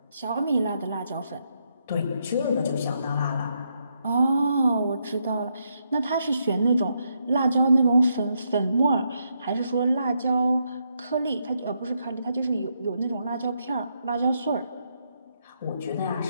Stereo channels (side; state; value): both; inverted; correlation -0.79